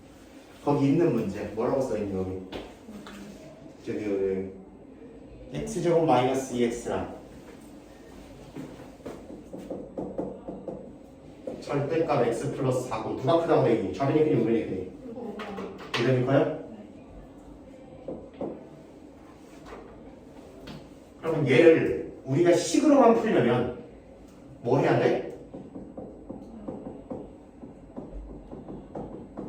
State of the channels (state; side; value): identical; both; correlation 1.00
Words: 거기 있는 문제 뭐라고 써있니 여기? 저기 x제곱 마이너스 2x랑 절대값 x 플러스 4고 누가 크다고 얘기해? 좌변이 크니 우변이 크니? 우변이 커요? 그러면 얘를 우리가 식으로만 풀려면 뭐 해야 돼?